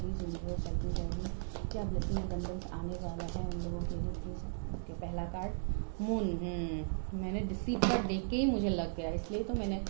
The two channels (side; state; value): left; silent; digital silence